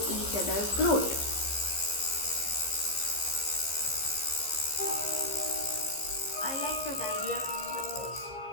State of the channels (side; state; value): right; late; 15 ms